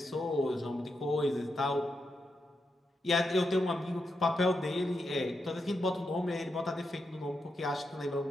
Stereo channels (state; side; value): normal; both; correlation 0.85